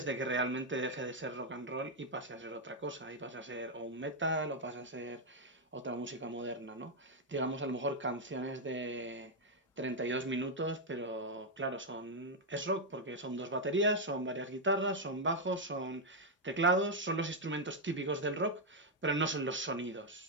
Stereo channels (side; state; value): both; normal; correlation 0.00